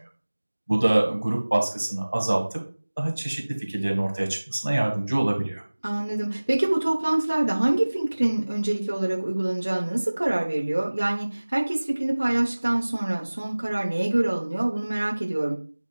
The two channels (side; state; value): both; inverted; correlation -1.00